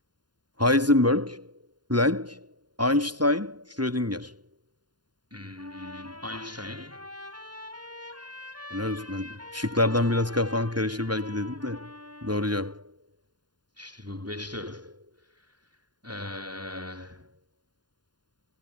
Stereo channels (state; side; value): late; left; 0.70 ms